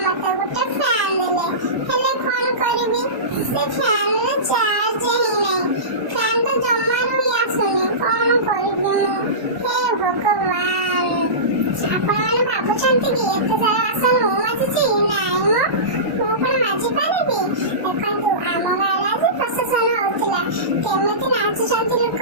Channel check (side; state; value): left; late; 1.1 ms